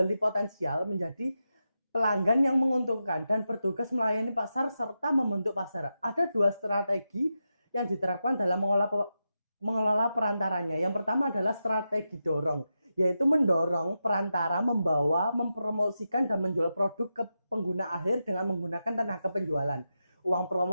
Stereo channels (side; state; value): both; inverted; correlation -0.88